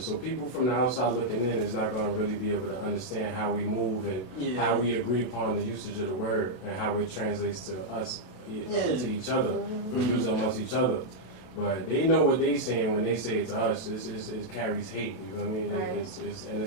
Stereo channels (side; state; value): right; late; 32 ms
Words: people from the outside looking in is not going to really be able to understand how we move and Yeah. how we agree upon the usage of the word and how it translates to us, to each other. We use it amongst each other. But they know what they saying when they say it to us. It carries hate. You know what I mean? Right. And